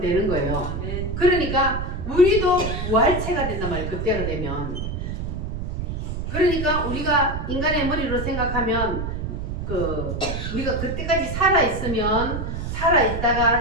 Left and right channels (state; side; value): noise; right; rumble, 4 dB below the sound